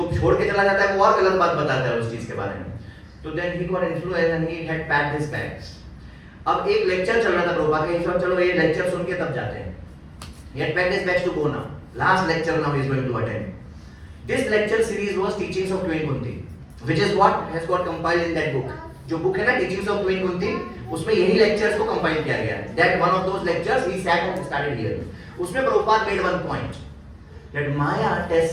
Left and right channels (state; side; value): identical; both; correlation 1.00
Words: छोड़ के चला जाता है वो और गलत बात बताता है उस चीज के बारे में. So then he got influenced and he had packed his bags. अब एक लेक्चर चल रहा था प्रभुपाद का, सब चलो ये लेक्चर सुन के तब जाते हैं. He had packed his bags to go now. Last lecture now he is going to attend. This lecture series was Teachings of Queen Kunti, which is what has got compiled in that book. जो book है ना Teachings of Queen Kunti, उसमें यही lectures को compile किया गया है. That one of those lectures he sat and started hearing. उसमें Prabhupada made one point that Maya